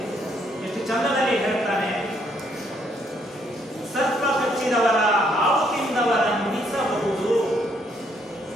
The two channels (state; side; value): normal; both; correlation 0.70